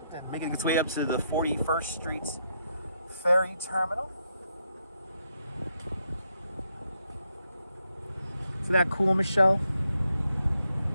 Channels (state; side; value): inverted; both; correlation -0.79